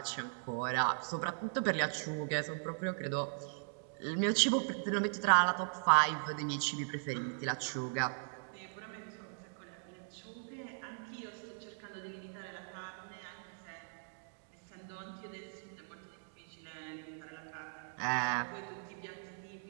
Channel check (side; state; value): left; silent; digital silence